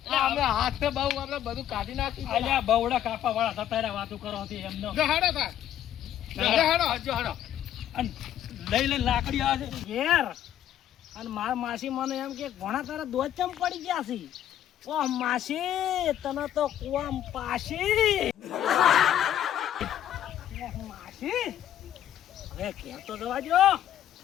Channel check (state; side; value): quieter; right; 11.2 dB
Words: અમે હાથ બહુ આપણે બધું કાઢી નાખ્યું અલ્યા બવડા કાપા વાળા થતા રહ્યા વાતો કરો છે એમનો જો હાડો થા. જો હાડો. જો હડો અને લઈ લઈને લાકડી આવે છે ઘેર અને માર માસી મને એમ કે ઘણા તારા દોધ ચમ પડી ગયા છે ઓ માસી તને તો કુવામ પાસી ઓહ, માસી હવે ઘેર તો જવા દો